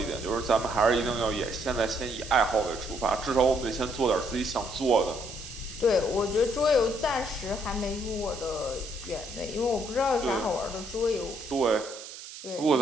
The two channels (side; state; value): right; noise; hiss, 13 dB below the sound